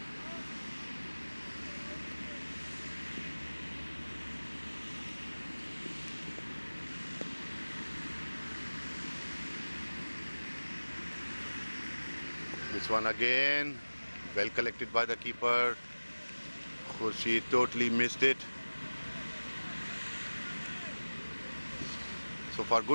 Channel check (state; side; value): inverted; both; correlation -1.00